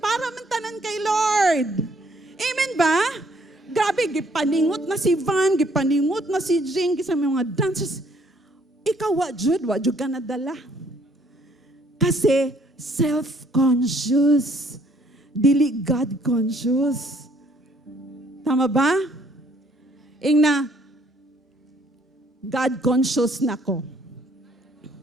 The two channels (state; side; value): normal; both; correlation 0.64